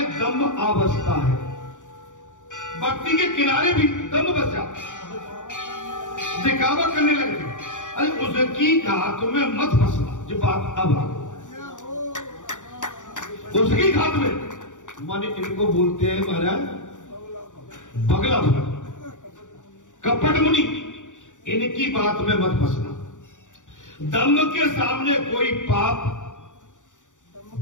दम्भ अवस्था है। भक्ति के किनारे भी दम्भ बच जाता, दिखावा करने लगते। अरे उसकी घात में मत फंसना। जो बात अब आ उसकी घात में माने इनको बोलते हैं महाराज बगला भर, कपट मुनि। इनकी बात में मत फंसना। दम्भ के सामने कोई पाप,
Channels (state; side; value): late; right; 0.86 ms